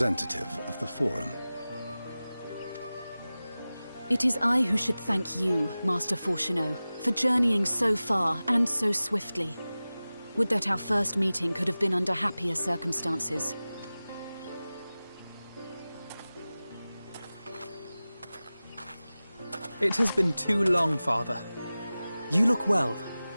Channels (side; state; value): both; inverted; correlation -0.97